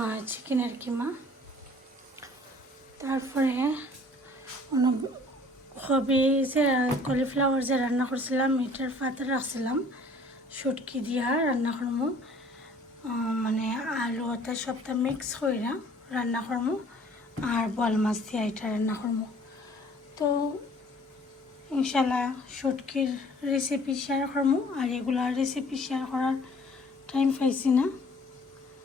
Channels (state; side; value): normal; both; correlation 0.54